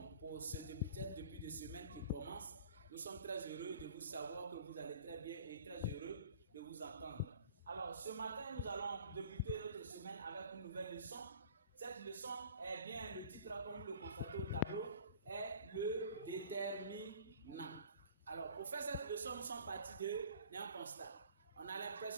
pour peut-être depuis des semaines qui commencent. Nous sommes très heureux de vous savoir que vous allez très bien et très heureux de vous entendre. Alors ce matin, nous allons débuter notre semaine avec une nouvelle leçon. Cette leçon est bien, le titre comme vous le constatez au tableau, est le déterminant. Alors pour faire cette leçon, nous sommes partis d'un constat. On a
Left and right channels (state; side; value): inverted; both; correlation -0.48